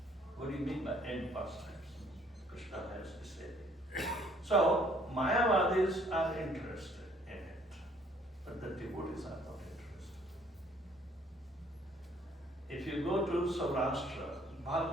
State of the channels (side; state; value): both; normal; correlation 0.61